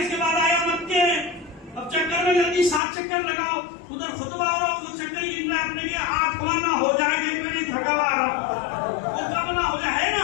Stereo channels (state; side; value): drops out; right; at 2.8 s